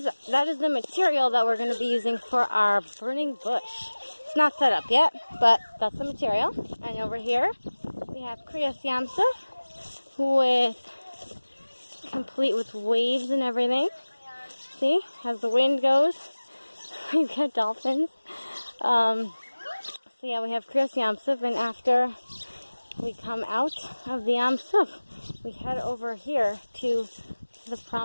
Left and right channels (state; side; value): inverted; both; correlation -1.00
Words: is the material that we're going to be using for our burning bush. It's not set up yet, but that's the material. And over here, we have Kriyas Yamsuf complete with waves and everything. See, as the wind goes, we've got dolphins. So yeah, we have Kriyas Yamsuf, and after we come out of the Yamsuf, we head over here to the